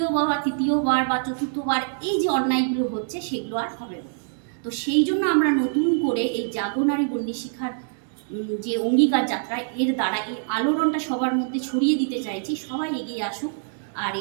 বা তৃতীয়বার বা চতুর্থবার এই যে অন্যায়গুলো হচ্ছে সেগুলো আর হবে না। তো সেই জন্য আমরা নতুন করে এই জাগরণারী বন্দি শিখার যে অঙ্গীকার যাত্রা, এর দ্বারা এই আলোড়নটা সবার মধ্যে ছড়িয়ে দিতে চাইছি, সবাই এগিয়ে আসুক। আর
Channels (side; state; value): left; silent; digital silence